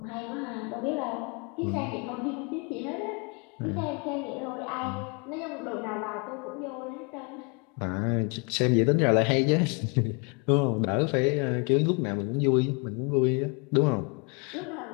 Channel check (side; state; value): right; quieter; 33.2 dB